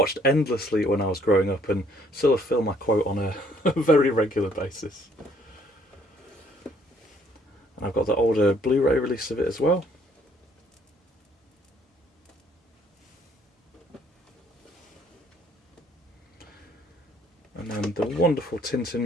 endlessly when I was growing up, and still a film I quote on a very regular basis. And I've got the older Blu-ray release of it as well. And then the wonderful Tintin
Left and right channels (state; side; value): normal; both; correlation 0.63